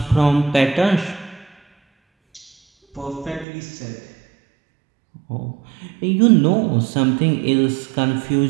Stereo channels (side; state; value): left; drops out; at 3.5 s